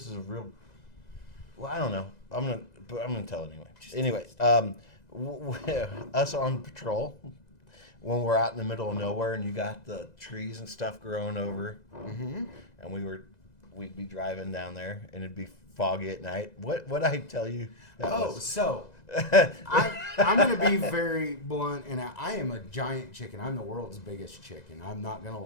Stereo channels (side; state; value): right; late; 2.0 ms